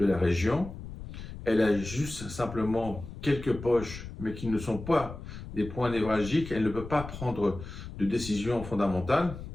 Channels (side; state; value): left; noise; rumble, 11 dB below the sound